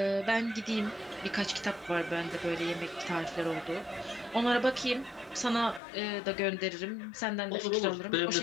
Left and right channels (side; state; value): right; drops out; at 5.8 s